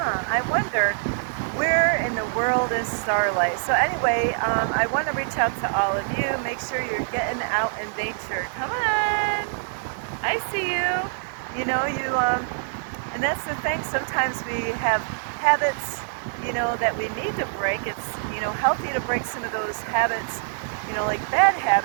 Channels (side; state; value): left; silent; digital silence